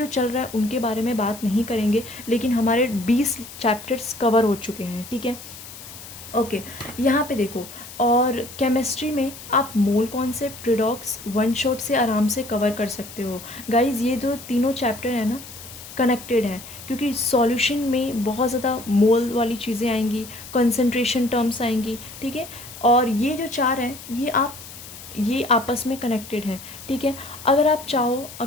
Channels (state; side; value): noise; left; hiss, 15 dB below the sound